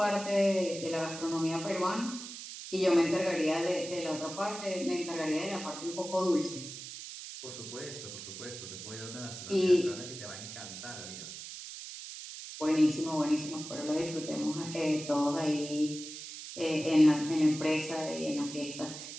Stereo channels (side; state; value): right; noise; hiss, 10 dB below the sound